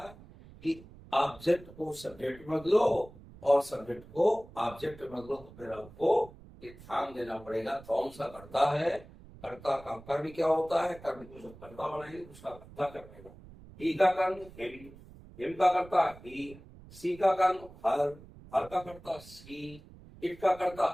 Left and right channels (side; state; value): right; noise; rumble, 20 dB below the sound